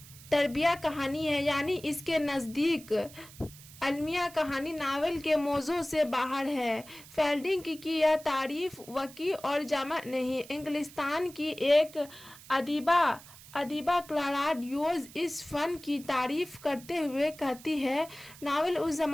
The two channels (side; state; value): right; noise; hiss, 19 dB below the sound